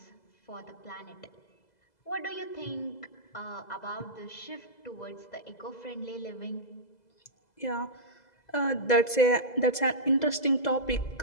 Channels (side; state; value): right; late; 2.0 ms